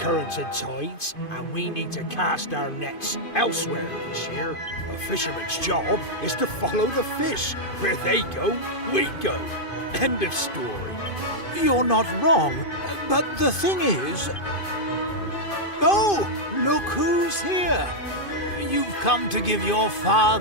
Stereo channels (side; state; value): right; late; 2.5 ms